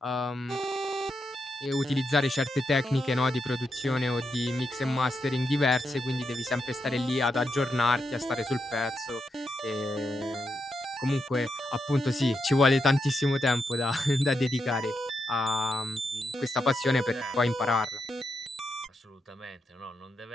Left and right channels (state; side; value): normal; both; correlation 0.84